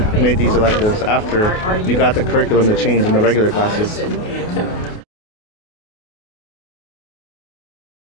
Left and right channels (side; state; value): right; late; 28 ms